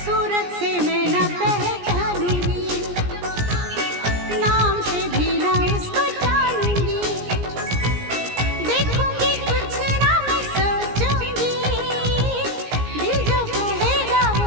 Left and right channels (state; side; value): late; left; 17 ms